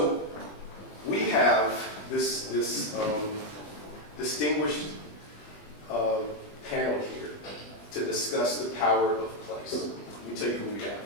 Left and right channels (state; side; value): late; right; 20 ms